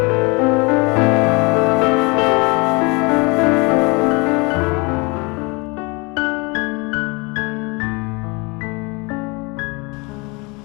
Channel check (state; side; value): quieter; right; 28.4 dB